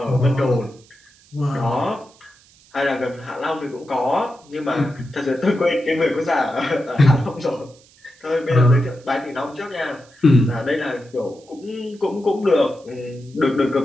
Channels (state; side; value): noise; right; hiss, 28 dB below the sound